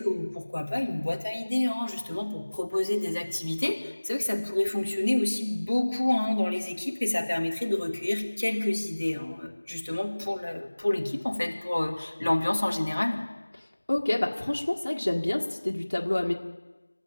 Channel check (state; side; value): inverted; both; correlation -1.00